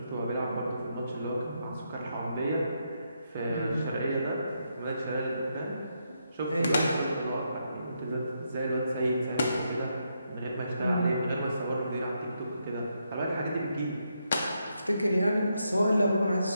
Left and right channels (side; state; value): both; inverted; correlation -0.80